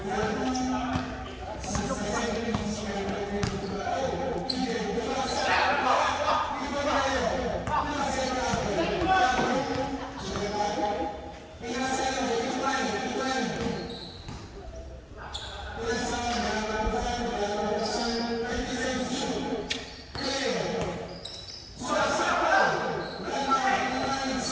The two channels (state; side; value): identical; both; correlation 1.00